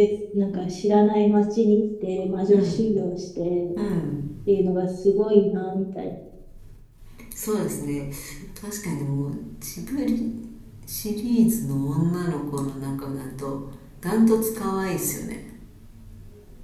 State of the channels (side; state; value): both; identical; correlation 1.00